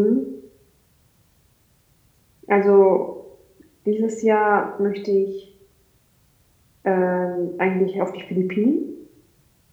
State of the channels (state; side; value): identical; both; correlation 1.00